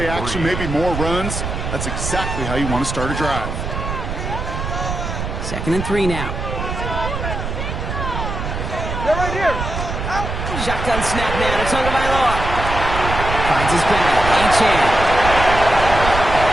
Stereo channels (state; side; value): noise; right; rumble, 4 dB below the sound